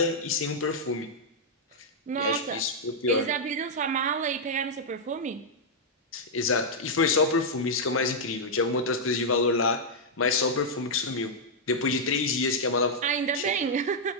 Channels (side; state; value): both; normal; correlation -0.06